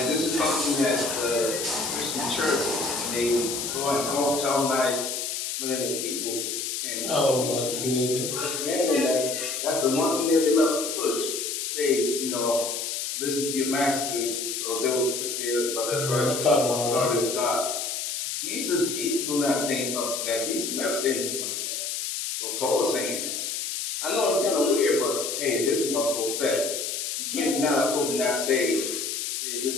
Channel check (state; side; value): noise; left; hiss, 3 dB below the sound